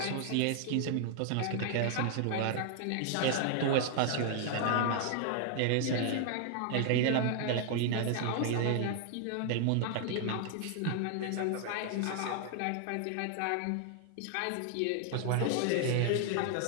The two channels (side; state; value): both; different; correlation 0.00